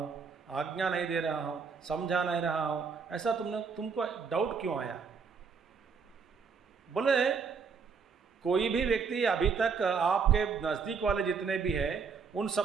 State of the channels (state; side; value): quieter; left; 5.6 dB